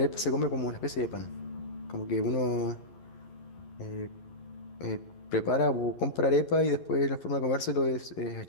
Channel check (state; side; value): late; right; 11 ms